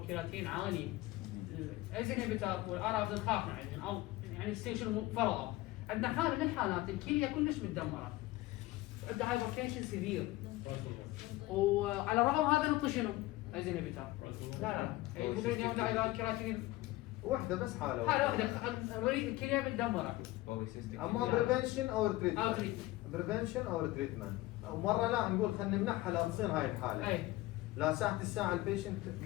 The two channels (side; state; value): right; quieter; 18.4 dB